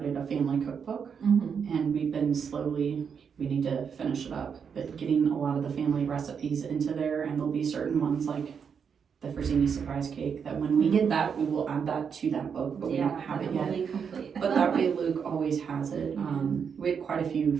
a family cookbook, and we've been we need to finish it up, but getting a lot of the family recipes into there, and there'll be certain ones like the Frazzini surprise cake that when we get that, we will add that to that book, but we don't have it yet. But that way Luke always has it. We had quite a few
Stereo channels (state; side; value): quieter; left; 6.7 dB